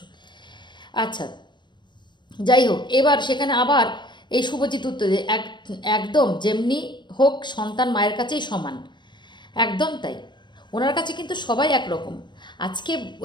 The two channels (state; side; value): late; right; 0.22 ms